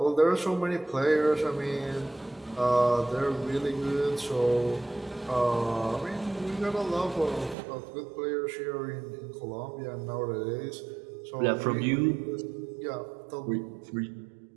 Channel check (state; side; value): drops out; left; at 7.6 s